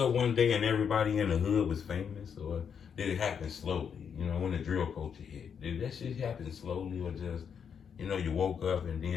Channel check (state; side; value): quieter; right; 7.3 dB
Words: one day and everybody in the hood was famous, or did it happen slowly? You know, when the drill culture hit, did that shit happen slowly, or just, you know, you woke up and